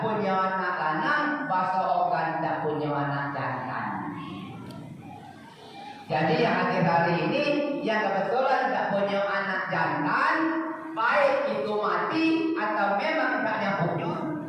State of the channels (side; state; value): both; identical; correlation 1.00